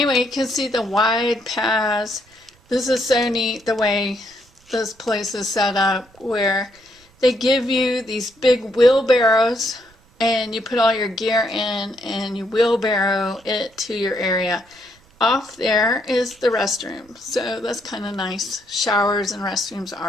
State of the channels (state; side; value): noise; right; rumble, 30 dB below the sound